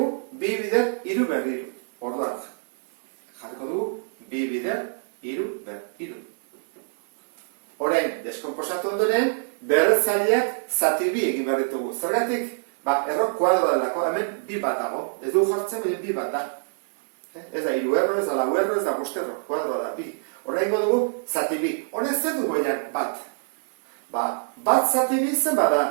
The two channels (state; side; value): silent; left; 61 dB below the other